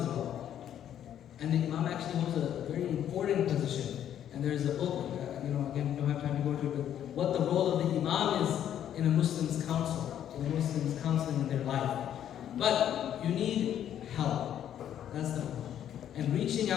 well. And the imam actually holds a very important position. And there's a book, again, we don't have time to go into it, but what the role of the imam is in a Muslim's counsel, in a Muslim's counseling in their life. But you need help. That's the point. And reaching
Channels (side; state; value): right; quieter; 10.3 dB